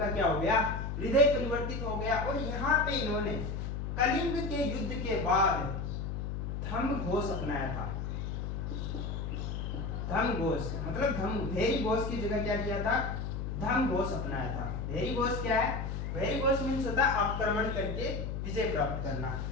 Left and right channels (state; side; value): noise; left; hum, 4 dB below the sound